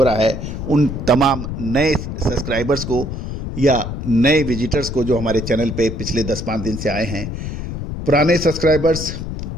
रहा है उन तमाम नए सब्सक्राइबर्स को या नए विजिटर्स को जो हमारे चैनल पे पिछले 10-5 दिन से आए हैं। पुराने सब्सक्राइबर्स,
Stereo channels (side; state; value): left; noise; rumble, 6 dB below the sound